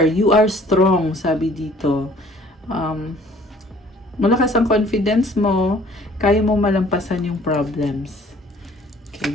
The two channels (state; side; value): normal; both; correlation 0.55